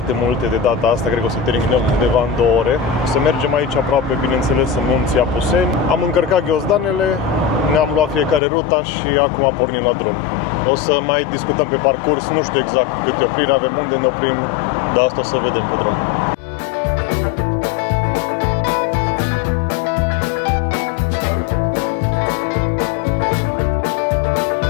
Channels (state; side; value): drops out; right; at 8.4 s